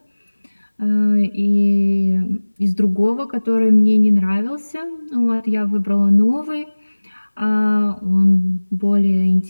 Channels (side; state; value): both; inverted; correlation -1.00